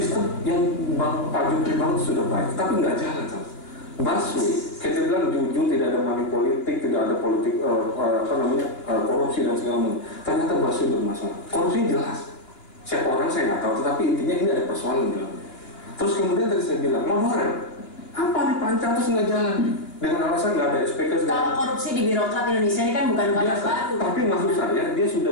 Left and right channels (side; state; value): right; late; 2.8 ms